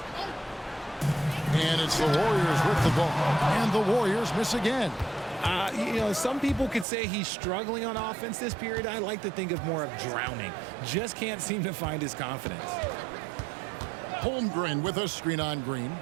And it's the Warriors with the ball. And the Warriors miss again. Some people could say he's struggling on offense this period. I like to think of more of drowning. Just can't seem to find his confidence. Holmgren with a screen on Green.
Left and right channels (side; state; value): left; drops out; at 6.9 s